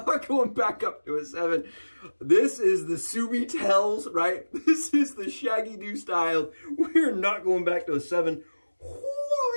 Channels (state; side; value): inverted; both; correlation -1.00